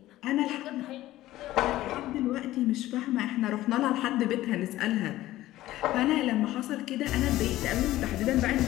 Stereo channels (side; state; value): right; quieter; 15.6 dB